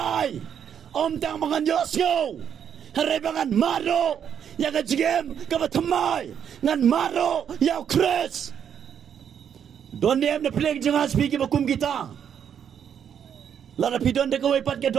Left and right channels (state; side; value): quieter; left; 8.4 dB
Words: om tang mangan yosyo harebangan maro ya ka jigem ka ba thamai ngan maro ya kres don dem na plek janga speak ba kum kita lara pidon de ko pat ke